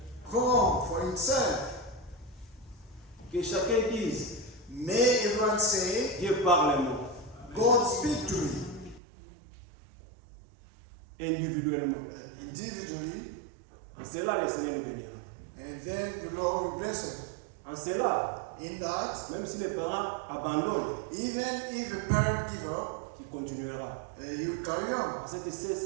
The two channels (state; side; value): drops out; left; at 9.0 s